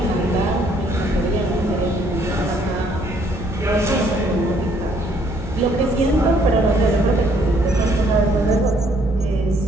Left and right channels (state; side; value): normal; both; correlation 0.65